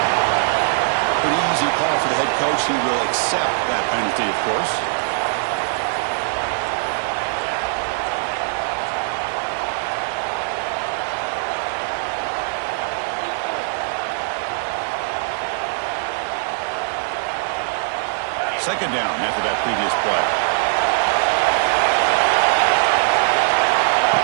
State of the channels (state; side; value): silent; left; 65 dB below the other